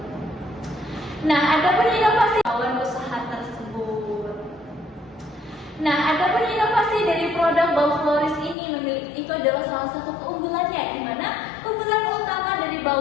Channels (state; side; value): drops out; right; at 8.6 s